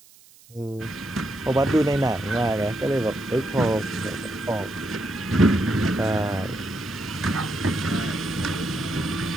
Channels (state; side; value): noise; right; hiss, 25 dB below the sound